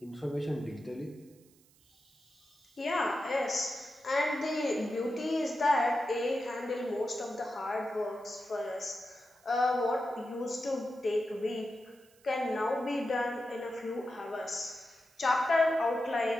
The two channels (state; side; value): noise; right; hiss, 30 dB below the sound